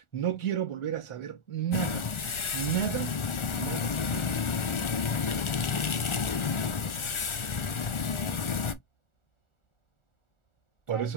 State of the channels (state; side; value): late; right; 1.4 ms